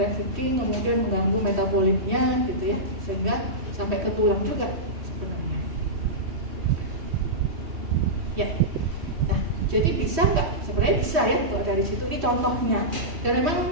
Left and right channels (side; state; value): left; late; 3.1 ms